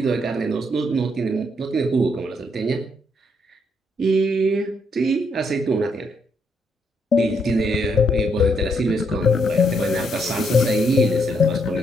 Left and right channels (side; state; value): both; normal; correlation 0.75